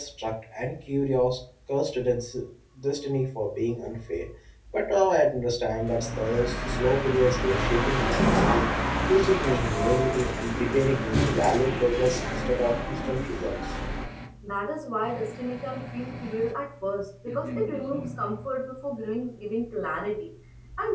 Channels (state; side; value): identical; both; correlation 1.00